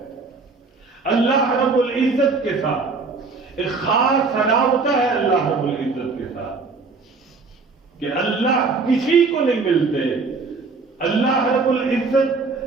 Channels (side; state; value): left; quieter; 4.3 dB